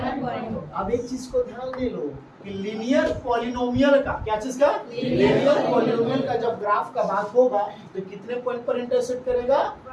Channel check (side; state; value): both; identical; correlation 1.00